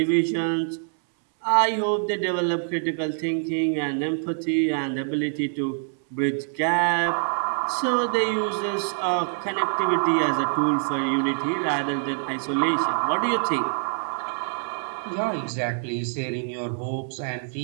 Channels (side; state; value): left; silent; 62 dB below the other